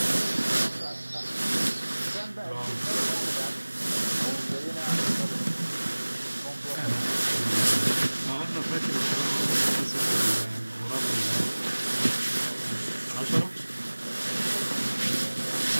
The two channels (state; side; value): inverted; both; correlation -1.00